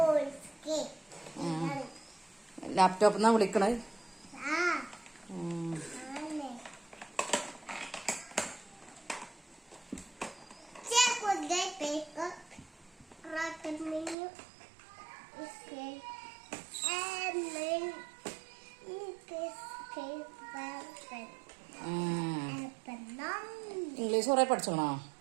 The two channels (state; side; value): drops out; left; at 14.2 s